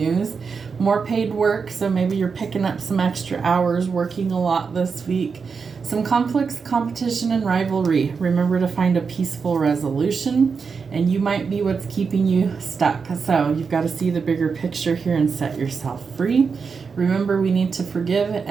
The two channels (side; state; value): left; quieter; 5.4 dB